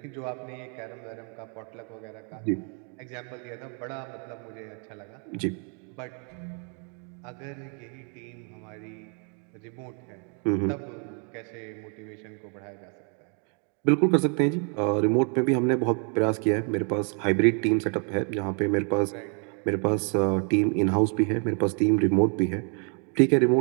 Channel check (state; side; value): quieter; left; 39.0 dB